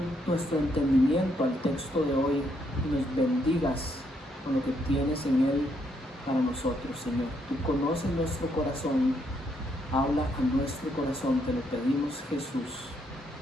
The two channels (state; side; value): normal; both; correlation 0.74